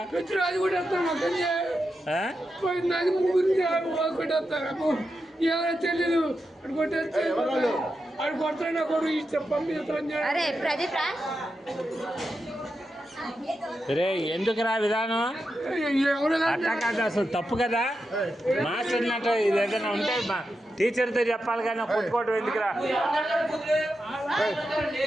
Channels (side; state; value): both; normal; correlation 0.88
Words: తెలీదు అడు కొడతా కొడు అరే ప్రదీప్ రా రే ఎందుకు రా విధానం అట్లా కాదు అసలు తప్పు కదా మాస్టర్ అన్నట్టు ఇది ఏదైనా ఉంటే టీచర్తో చెప్పాలి కానీ కొట్టుకోవడం ఎందుకురా